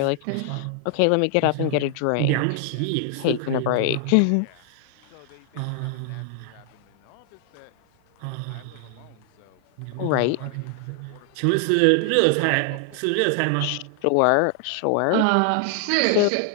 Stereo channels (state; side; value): different; both; correlation 0.00